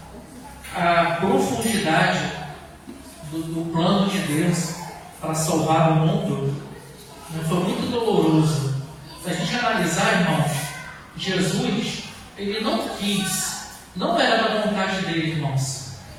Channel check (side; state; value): both; identical; correlation 1.00